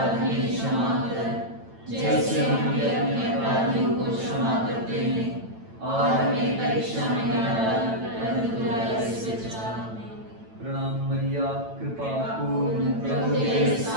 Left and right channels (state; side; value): late; left; 9.0 ms